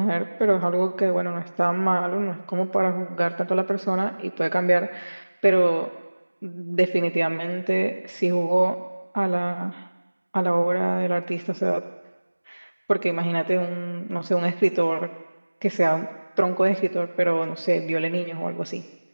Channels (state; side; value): inverted; both; correlation -1.00